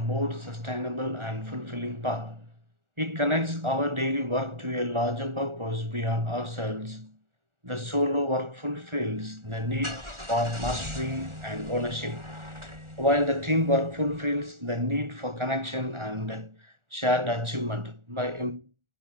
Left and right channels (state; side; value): late; left; 1.4 ms